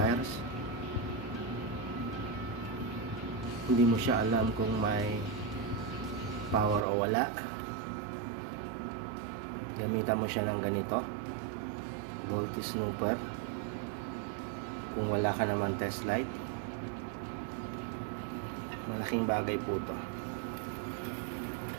hindi mo siya alam kung may power o wala, gamitan mo siya ng ganito, voltage snooper. Kung wala ka naman test light, malaking bagay po to.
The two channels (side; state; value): left; drops out; at 6.9 s